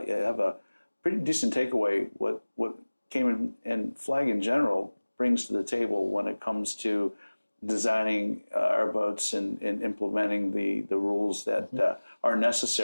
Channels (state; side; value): inverted; both; correlation -1.00